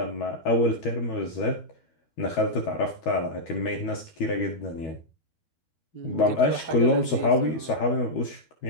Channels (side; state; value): right; late; 12 ms